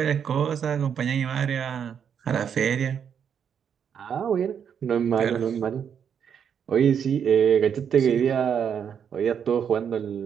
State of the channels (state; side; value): quieter; left; 7.8 dB